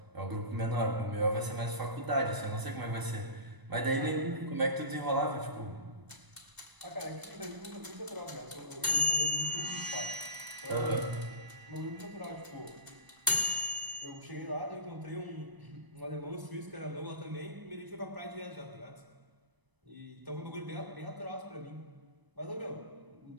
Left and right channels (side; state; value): left; late; 1.0 ms